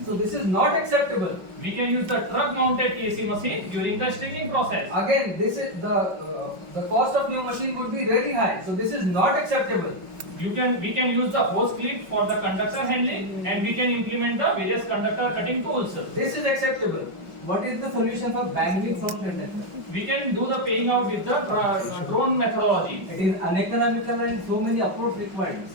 So this is not acceptable. We can use the truck mounted TAC machine during the stringing process. Again, this is the cost of new machine would be really high. So this is not acceptable. We can use the hose clip for the conductor handling, and we can implement the various conductor cutting tools. This is acceptable. What is the solution for banging from conductor? We can do the paying out with the drone methodology. It is uneconomical and so many approach required.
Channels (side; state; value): left; late; 5.4 ms